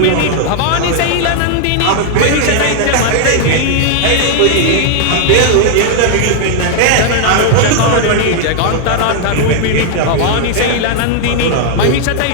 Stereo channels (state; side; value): different; both; correlation 0.00